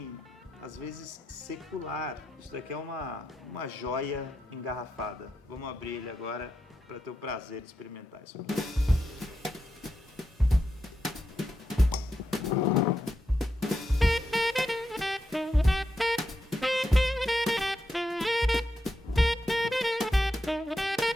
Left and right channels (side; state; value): both; normal; correlation 0.85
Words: às vezes secular. Isso daqui é uma joia engarrafada. Vamos abrir ele agora para ter o prazer de experimentar isso aqui.